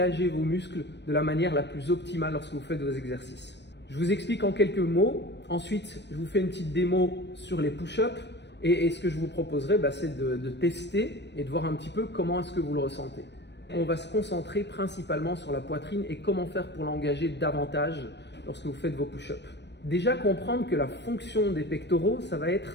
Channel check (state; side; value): late; right; 0.50 ms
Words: vos muscles de la manière la plus optimale lorsque vous faites vos exercices. Je vous explique en quelques mots, ensuite je vous fais une petite démo sur les push-ups et ce que je vous proposerai, c'est de tester et de voir un petit peu comment est-ce que vous le ressentez. On va se concentrer principalement sur la poitrine et comment faire pour l'engager davantage lorsque vous faites vos push-ups. Déjà comprendre que la fonction des pectoraux, ça va